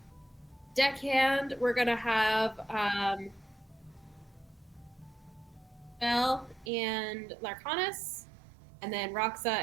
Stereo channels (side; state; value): left; drops out; at 6.7 s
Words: Deckhand, we're going to have Belle and Larcanus. And then Roxa